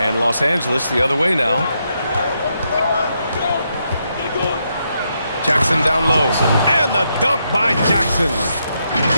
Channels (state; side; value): inverted; both; correlation -0.80